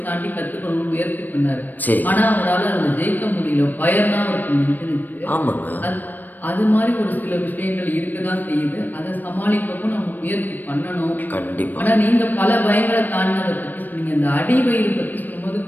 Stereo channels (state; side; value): late; right; 0.088 ms